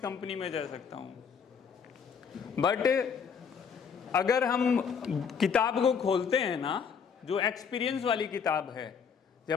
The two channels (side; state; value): right; quieter; 6.6 dB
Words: में जा सकता हूँ। बट अगर हम किताब को खोलते हैं ना, जो एक्सपीरियंस वाली किताब है,